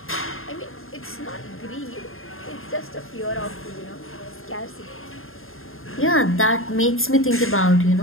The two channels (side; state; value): right; late; 0.60 ms